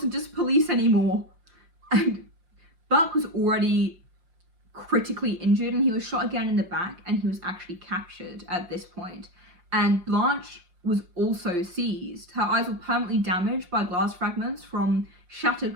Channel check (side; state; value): left; late; 5.7 ms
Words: just police anymore. And Buck was already critically injured, and he was shot again in the back, and he was actually captured at this point. And Blanche was also seized. Her eyes were permanently damaged by glass fragments from shattered